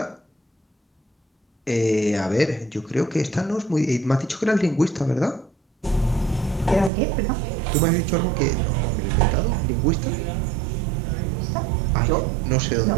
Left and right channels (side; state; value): left; drops out; at 6.9 s